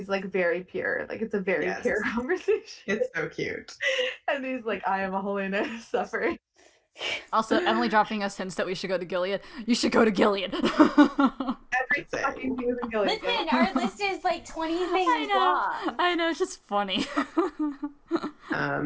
like very pure. Like it's a very pure conversation. It's so cute. And he's like, I am a Holy Knight of Suffering. Also, Emily dropping us hints that we should go to Gilead. You should go to Gilead. Every fucking thing is in Gilead. Listen, our list is like 20 things long. I know, it's just funny.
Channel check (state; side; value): identical; both; correlation 1.00